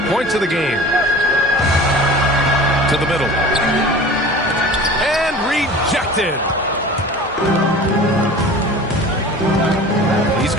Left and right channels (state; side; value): normal; both; correlation 0.40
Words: points of the game. To the middle. And rejected. He's